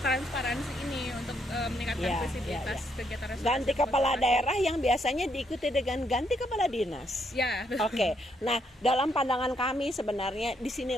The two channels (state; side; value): normal; both; correlation 0.74